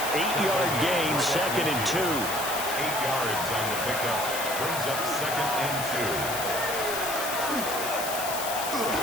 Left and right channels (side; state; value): left; noise; hiss, 5 dB below the sound